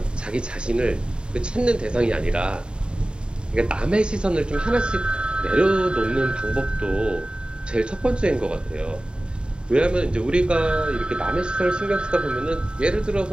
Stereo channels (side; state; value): left; late; 0.051 ms